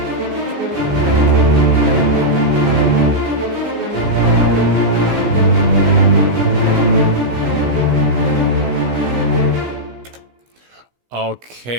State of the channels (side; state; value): left; late; 16 ms